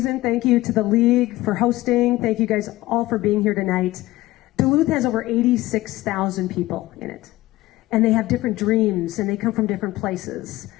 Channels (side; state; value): right; quieter; 17.8 dB